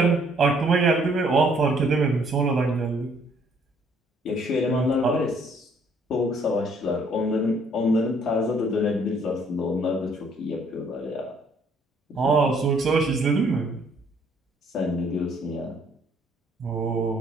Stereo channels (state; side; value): normal; both; correlation 0.63